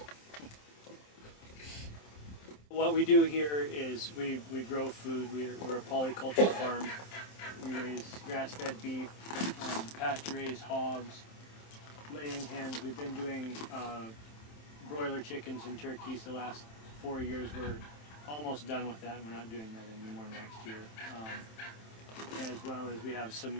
What we do here is we grow food. We're a polyculture farm. We raise grass-fed beef, pasture-raised hogs, laying hens. We've been doing broiler chickens and turkeys the last 4 years. We're almost done with that, and we're not doing that anymore next year. As well as we have some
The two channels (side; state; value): right; late; 27 ms